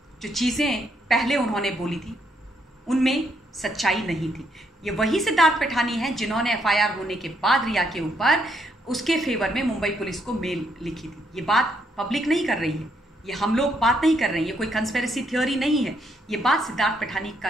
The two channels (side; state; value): both; normal; correlation 0.74